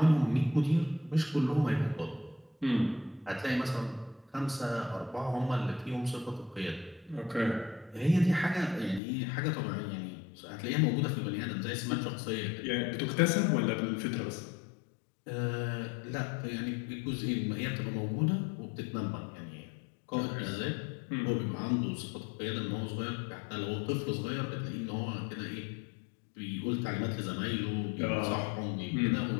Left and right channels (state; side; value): drops out; right; at 9.0 s